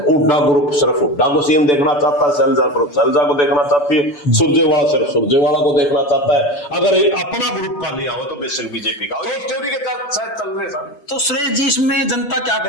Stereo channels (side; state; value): right; late; 6.9 ms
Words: हुड्डा ग्रुप सिर्फ हुड्डा को सीएम देखना चाहता है, शैलजा ग्रुप शैलजा को देखना चाहती है, सुरजेवाला सिर्फ सुरजेवाला को देखना चाहता है। अगर अपना ग्रुप का लिया हो तो बेशक बीजेपी का चल रहे हैं। तो सुरेश जी, इसमें जनता क्या